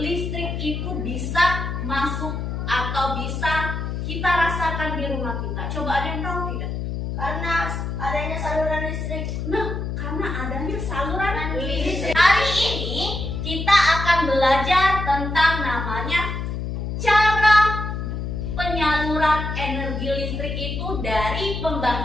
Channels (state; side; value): noise; left; hum, 4 dB below the sound